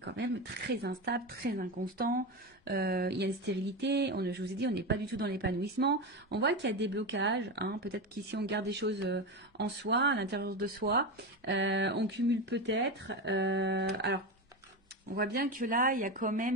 même très instable, très inconstant. Il y a une stérilité. Je vous ai dit, on n'est pas du tout dans l'épanouissement. On voit qu'il y a des blocages. Hein, peut-être qu'ici, on garde des choses en soi, à l'intérieur de soi. On cumule peut-être. Alors, on voit bien que là, il y a quand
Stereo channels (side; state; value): both; normal; correlation 0.19